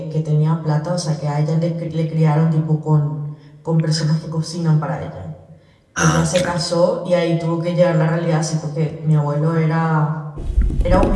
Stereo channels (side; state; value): both; identical; correlation 1.00